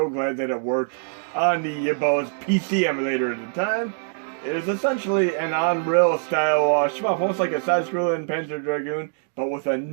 glad that it worked on the Yabo's PC emulator at the time. It is essentially an Unreal style shmup, almost like a side-scrolling Panzer Dragoon, but with a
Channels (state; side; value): silent; left; digital silence